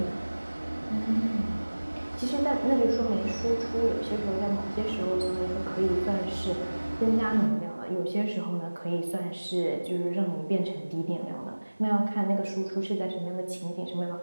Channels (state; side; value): inverted; both; correlation -1.00